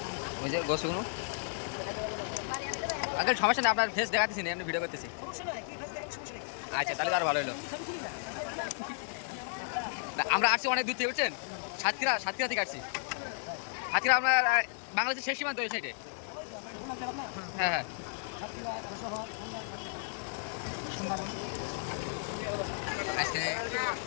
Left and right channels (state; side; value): silent; right; digital silence